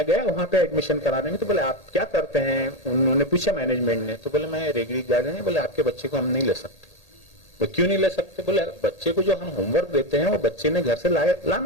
गया वहां पे एडमिशन कराने में। तो बोले आप क्या करते हैं? उन्होंने पूछा मैनेजमेंट ने। तो बोले मैं रेगड़ी गार्डन है। बोले आपके बच्चे को हम नहीं ले सकते। तो क्यों नहीं ले सकते? बोले बच्चे को जो हम होमवर्क देते हैं वो बच्चे ने घर से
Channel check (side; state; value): right; late; 1.8 ms